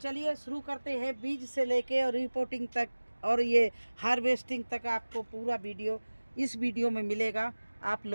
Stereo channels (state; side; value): inverted; both; correlation -1.00